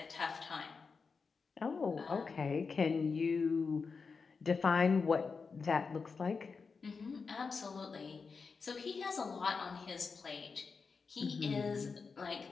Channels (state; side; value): quieter; right; 5.0 dB